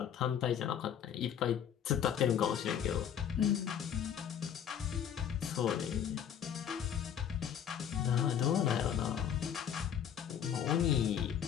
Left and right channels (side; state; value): right; quieter; 9.0 dB